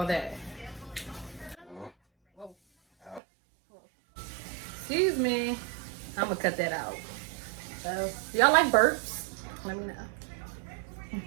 that? Excuse me. I'm gonna cut that out. Y'all like burps? Let me know.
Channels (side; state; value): left; drops out; at 3.2 s